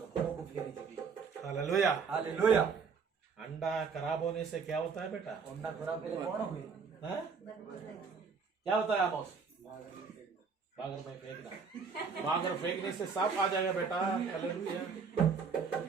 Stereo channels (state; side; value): quieter; left; 5.5 dB